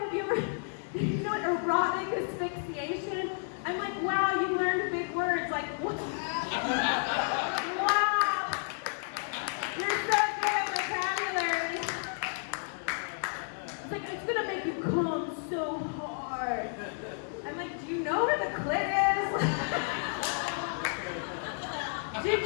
you ever, erotic asphyxiation? I'm like, wow, you learned big words. Like, what? Wow. You're so good at vocabulary. It's like, it's gonna make you come so hard. I'm like, do you know where the clit is? Did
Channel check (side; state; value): right; silent; 57 dB below the other